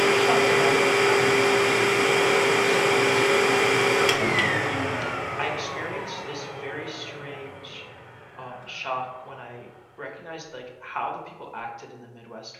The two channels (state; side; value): identical; both; correlation 1.00